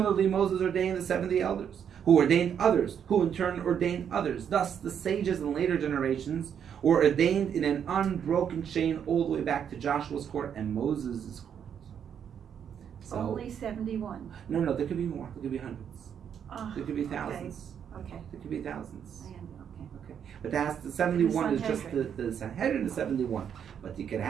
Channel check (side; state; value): left; quieter; 8.3 dB